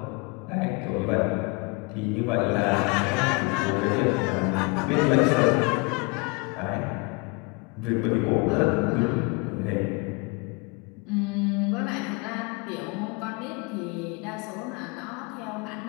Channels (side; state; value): right; quieter; 30.1 dB